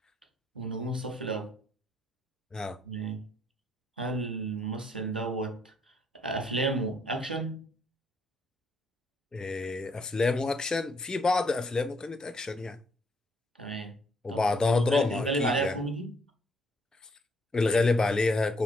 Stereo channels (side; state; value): both; normal; correlation 0.70